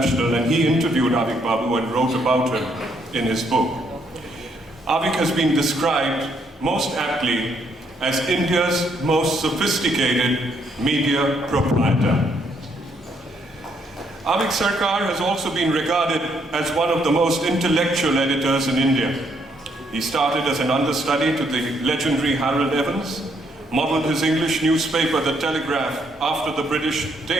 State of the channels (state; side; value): normal; both; correlation 0.72